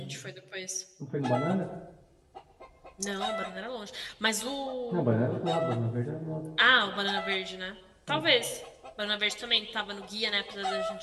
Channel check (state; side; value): identical; both; correlation 1.00